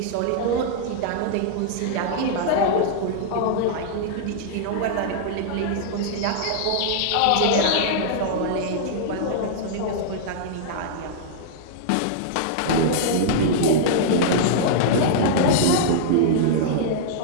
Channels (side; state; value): both; different; correlation -0.02